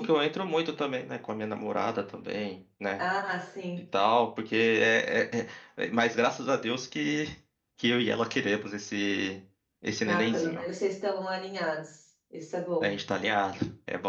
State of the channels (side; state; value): both; identical; correlation 1.00